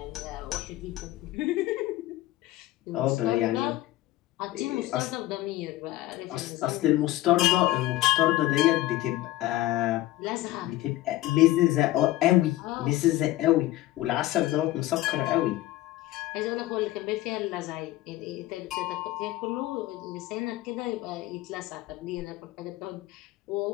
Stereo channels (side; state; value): right; quieter; 16.6 dB